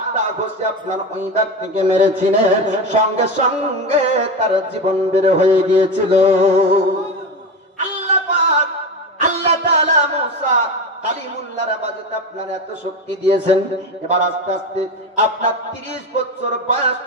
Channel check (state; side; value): normal; both; correlation 0.22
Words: ঘুষি আপনার ওই ব্যক্তিকে মেরেছিলেন, সঙ্গে সঙ্গে তার জীবন বের হয়ে গিয়েছিল। আল্লাহ তাআলা মুসা কালিমুল্লাহর বাজতে আপনার এত শক্তি দিয়েছেন। এবার আস্তে আস্তে আপনার 30 বছর বয়স